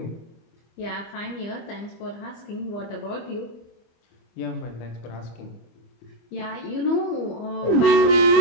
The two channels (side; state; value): right; late; 25 ms